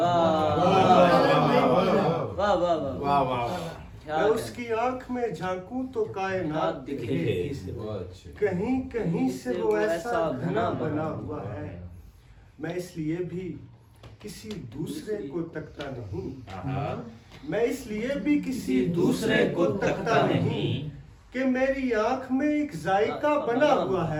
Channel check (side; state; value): both; identical; correlation 1.00